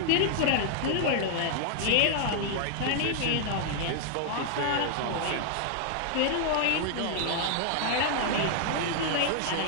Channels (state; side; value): different; both; correlation 0.00